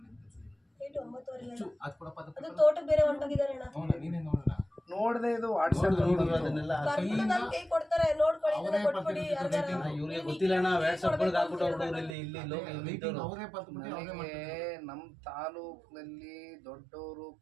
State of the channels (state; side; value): drops out; left; at 12.2 s